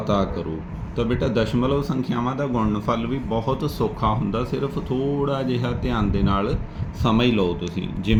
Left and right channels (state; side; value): identical; both; correlation 1.00